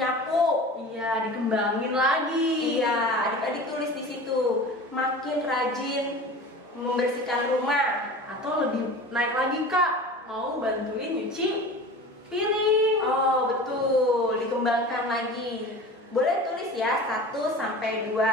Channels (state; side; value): normal; both; correlation 0.36